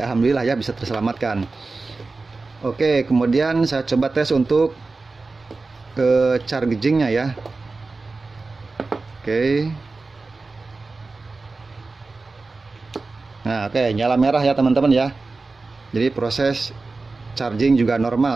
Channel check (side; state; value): left; quieter; 3.7 dB